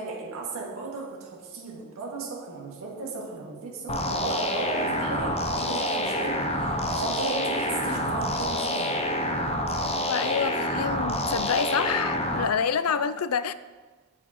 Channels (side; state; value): both; normal; correlation -0.08